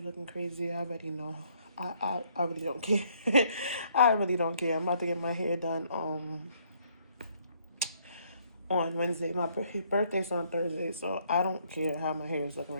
looking crazy. I already know. I really don't care. I really don't care. I'm about to get my hair done on Wednesday. My birthday's on Thursday, so I don't care how my hair is looking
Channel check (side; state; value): both; inverted; correlation -0.67